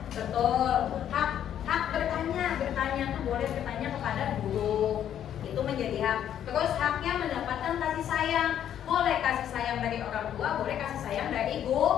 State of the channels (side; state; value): right; quieter; 10.1 dB